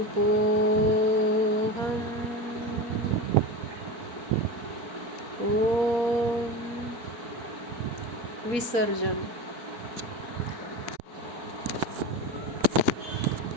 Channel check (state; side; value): late; left; 4.4 ms